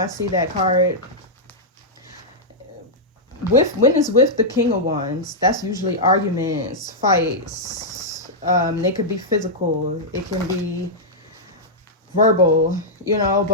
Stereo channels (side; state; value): both; normal; correlation -0.07